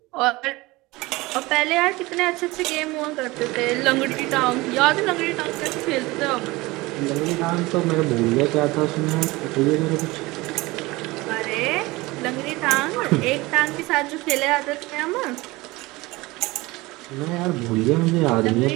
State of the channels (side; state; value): left; quieter; 21.5 dB